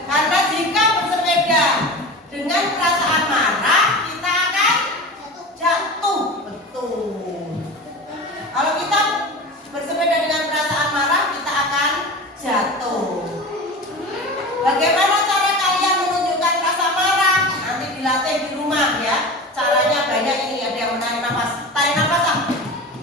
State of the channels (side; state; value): both; normal; correlation 0.31